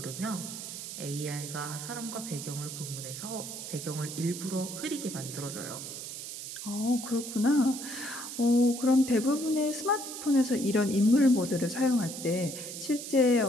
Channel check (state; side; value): noise; right; hiss, 8 dB below the sound